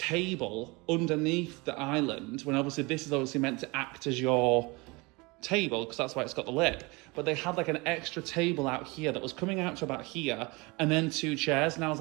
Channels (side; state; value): left; quieter; 25.7 dB